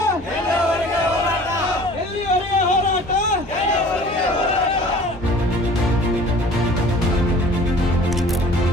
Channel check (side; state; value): both; normal; correlation 0.47